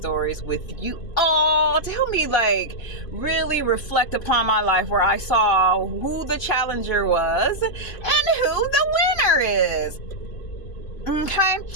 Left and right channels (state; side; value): late; right; 2.5 ms